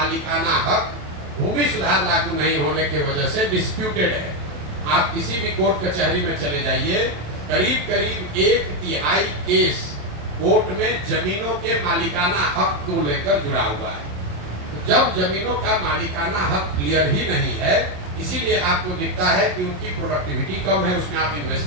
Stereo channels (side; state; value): left; late; 27 ms